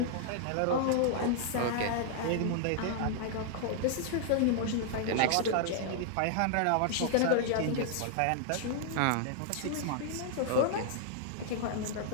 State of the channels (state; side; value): different; both; correlation -0.01